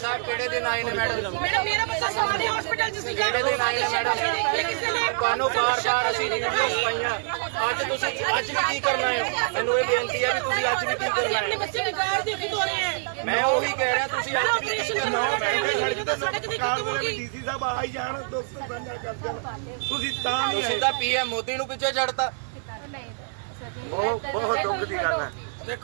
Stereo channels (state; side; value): silent; left; 59 dB below the other